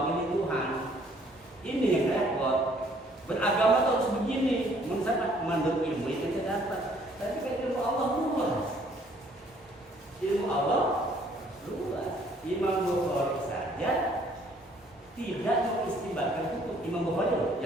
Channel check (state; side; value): normal; both; correlation 0.61